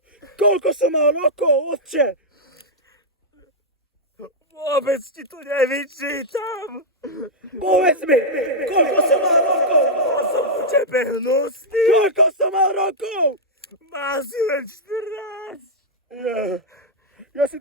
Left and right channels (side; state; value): both; normal; correlation -0.06